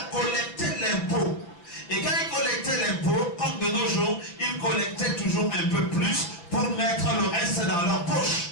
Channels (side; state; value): right; late; 5.8 ms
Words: collectaient l'impôt. Et quand ils collectaient l'impôt, comme de nos jours, ils collectaient toujours un peu plus pour mettre le reste dans leur poche.